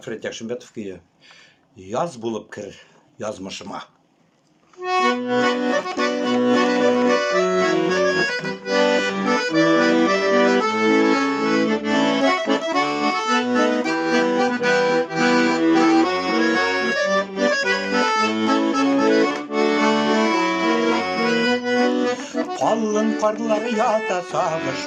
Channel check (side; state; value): both; identical; correlation 1.00